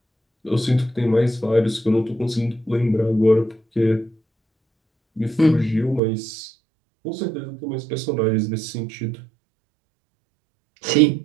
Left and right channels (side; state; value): left; drops out; at 6.0 s